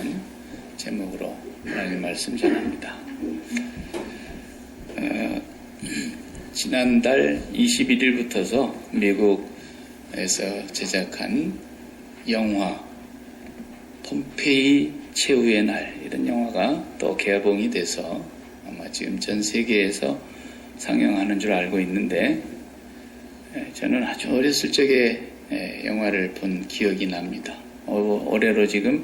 제목으로 하나님 말씀 전합니다. 지난달 21일부터서 미국에서 제작한 영화 폼페이 최후의 날, 이런 영화가 또 개봉이 돼서 아마 지금 전 세계에서 상영하는 줄 알고 있는데, 저는 아주 어렸을 적에 영화를 본 기억이 납니다. 올해로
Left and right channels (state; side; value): identical; both; correlation 1.00